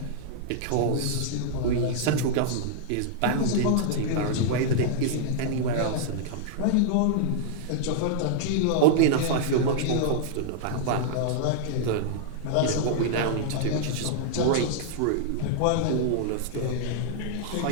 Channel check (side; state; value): both; different; correlation -0.02